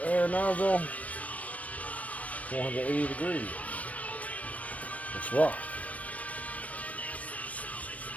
air nozzle. 480 degrees. Let's rock.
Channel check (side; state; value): right; late; 0.068 ms